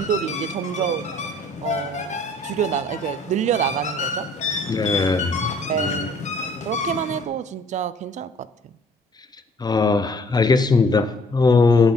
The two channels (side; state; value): both; normal; correlation 0.57